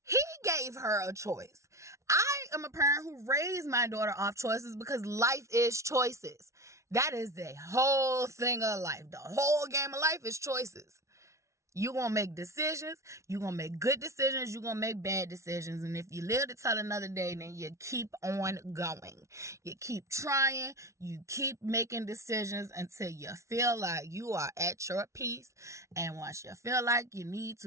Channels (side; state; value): left; late; 0.14 ms